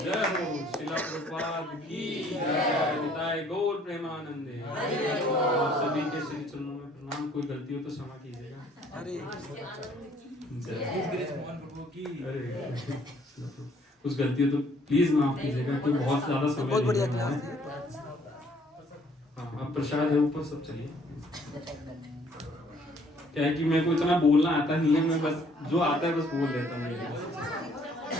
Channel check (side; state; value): both; normal; correlation 0.61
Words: जय हो शिला प्रभुपाद की जय, निताय गौर प्रेमानंदे। आप सभी के श्री चरणों में प्रणाम। कोई गलती हो तो क्षमा कीजिएगा। अरे कुछ गलती हो तो प्लीज माफ कीजिएगा, क्योंकि बहुत ज्यादा समय बहुत बढ़िया ले रहा है। क्लास हाँ, अब प्रसाद है ऊपर, सब चलिए। क्या है कि मेरे को इतना बोलना आता नहीं है, मैं बस जो आता है बस बोल देता हूँ।